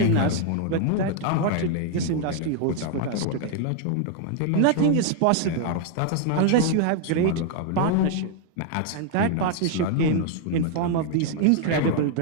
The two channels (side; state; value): both; different; correlation 0.00